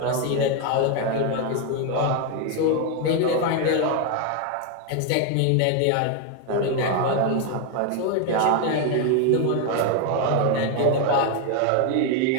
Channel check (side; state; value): both; different; correlation 0.01